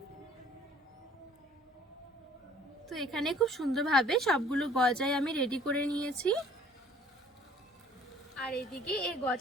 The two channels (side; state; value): both; normal; correlation 0.54